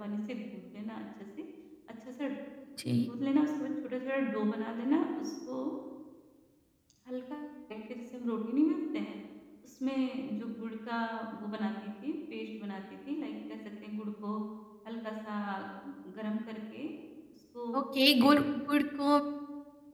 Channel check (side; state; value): both; identical; correlation 1.00